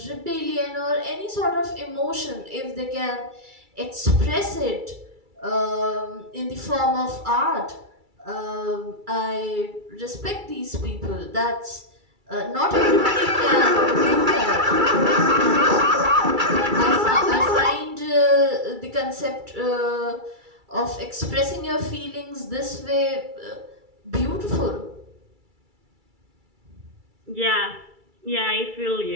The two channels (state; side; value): late; left; 2.3 ms